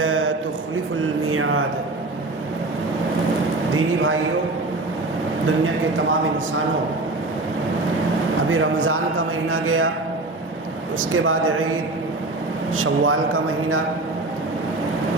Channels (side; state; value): left; quieter; 3.0 dB